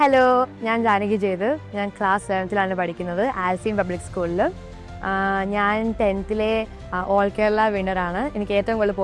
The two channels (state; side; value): identical; both; correlation 1.00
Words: Hello, ഞാൻ ജാനകി ജയദേവ്. ഞാൻ class 7th പഠിക്കുന്നത് ആൽസീൻ പബ്ലിക് സ്കൂളിൽ. ഞാൻ 10th ഓൾ കേരള വിന്നറാണ്. എനിക്ക് ഏറ്റവും കൂടുതൽ